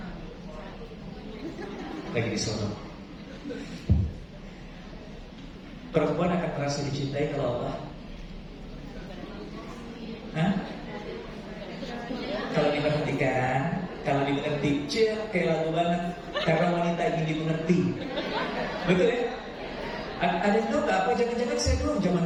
Lagi di sono. Perempuan akan merasa dicintai kalau apa? Hah? Kalau diperhatikan, kalau dimengerti, kayak lagu banget. Karena wanita ingin dimengerti. Betul ya? Ada yang tahu nggak apa? Jangan-jangan saya dulu zaman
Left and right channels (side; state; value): both; identical; correlation 1.00